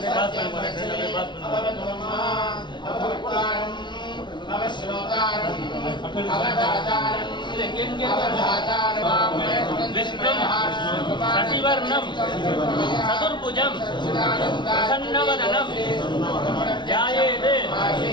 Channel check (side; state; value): right; late; 0.22 ms